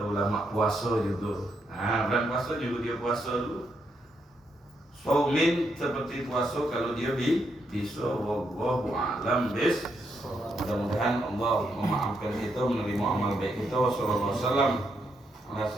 ulama, puasa juga. Nah bulan puasa juga dia puasa dulu. Saumin seperti puasa kalau dia bisa. Wallahu a'lam bis. Mudah-mudahan Allah memaafkan kita, menerima amal baik kita. Wassallallahu wasallam ala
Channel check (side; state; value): both; normal; correlation 0.79